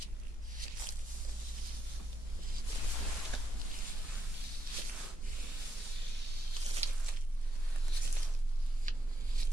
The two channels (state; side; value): normal; both; correlation 0.82